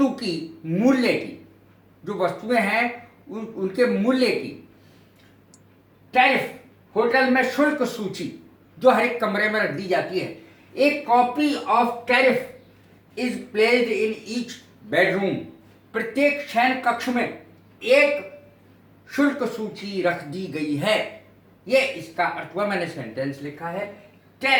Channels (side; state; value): both; identical; correlation 1.00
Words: की, मूल्य की, जो वस्तुएं हैं उनके मूल्य की, टैरिफ, होटल में शुल्क सूची जो हर एक कमरे में रख दी जाती है। एक copy of tariff is placed in each bedroom. प्रत्येक शयन कक्ष में एक शुल्क सूची रख दी गई है। ये इसका अर्थ हुआ। मैंने सेंटेंस लिखा है।